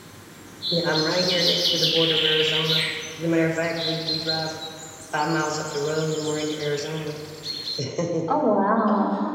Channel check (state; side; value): identical; both; correlation 1.00